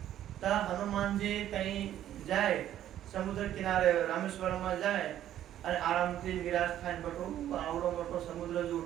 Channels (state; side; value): quieter; left; 11.8 dB